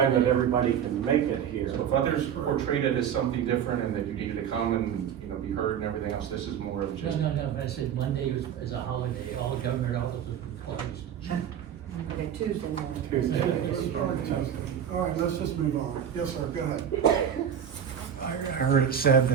that holiday. everybody can make it here. So if others portrayed it as something different and that you needed to come and, you know, be heard and everything else, this is more of No, just. no, but I said Monday is a holiday, all government offices were closed. Okay, Tuesday morning. Tuesday. It's probably Tuesday. All right, let's just move on. Yes, sir, go ahead. I heard it said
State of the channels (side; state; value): left; quieter; 8.8 dB